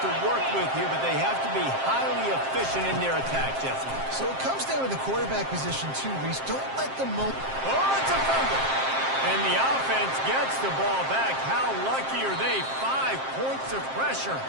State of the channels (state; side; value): late; left; 7.5 ms